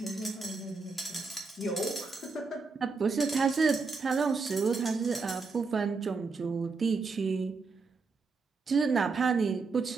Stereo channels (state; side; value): quieter; left; 4.4 dB